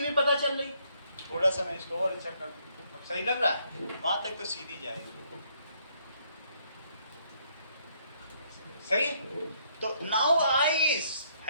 पता चल रही। थोड़ा सा मैं इसको और अच्छा कर दूं, अब सही लग रहा है? वहां तक तो सीधी जाएगी। सही है? तो now I is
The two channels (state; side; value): inverted; both; correlation -0.69